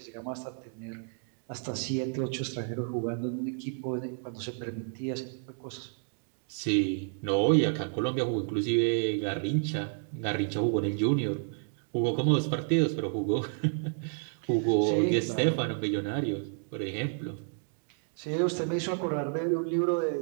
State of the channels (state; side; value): silent; left; 57 dB below the other